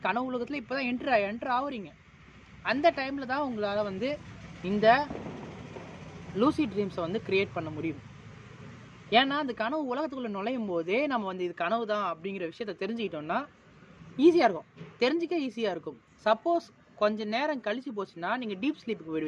கனவு உலகத்தில் இப்போ தான் என்ட்ரு ஆகுறீங்க. அந்த டைமில் தான் உங்களால் இந்த லூசிட் ட்ரீம்ஸை க்ரியேட் பண்ண முடியும். ஏன்னா அந்த கனவு உலகத்துக்குள்ளே நுழையும் போதே நம்ம இது கனவு தான் அப்படிங்கிற விஷயத்த தெரிஞ்சுக்கிட்டோம்னா ஈஸியாக இருக்கும், தெரிஞ்சிக்க ஈஸியாக இருக்கும். சப்போஸ் கொஞ்சம் நேரம் கழிச்சு போச்சுன்னா நீங்கள் டீப் ஸ்லீப்புக்கு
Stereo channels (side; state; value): both; identical; correlation 1.00